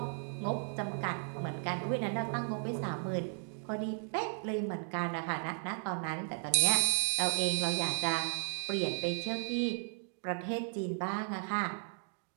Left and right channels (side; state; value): left; silent; 54 dB below the other